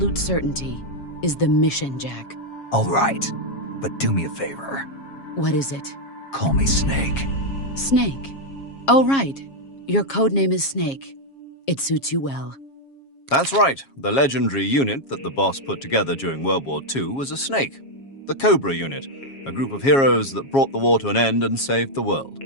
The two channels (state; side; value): late; right; 7.3 ms